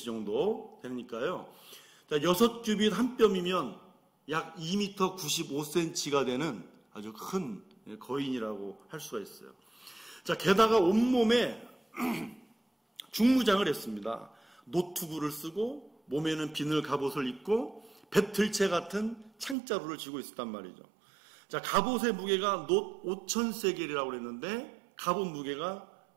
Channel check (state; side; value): drops out; left; at 19.6 s